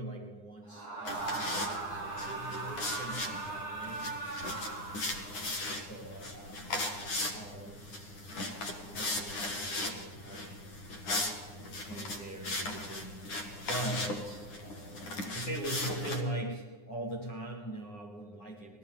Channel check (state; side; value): late; right; 9.8 ms